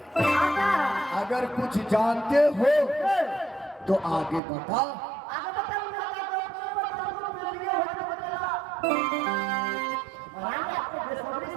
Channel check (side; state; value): left; drops out; at 4.4 s